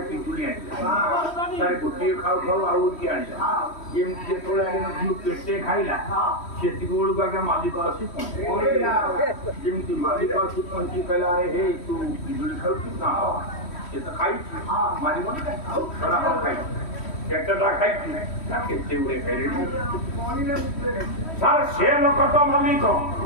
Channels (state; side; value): late; right; 3.1 ms